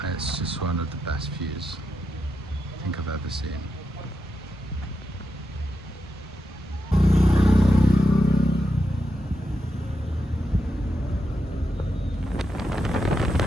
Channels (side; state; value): both; normal; correlation 0.86